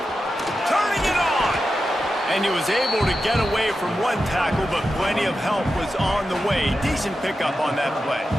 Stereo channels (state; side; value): normal; both; correlation 0.90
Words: Turning it on. And he was able to get away from one tackle, but plenty of help was on the way. Decent pickup on that play.